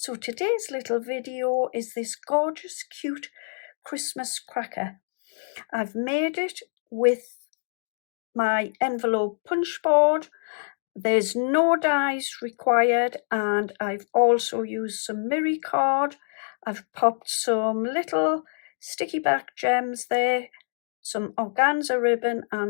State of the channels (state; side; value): silent; right; digital silence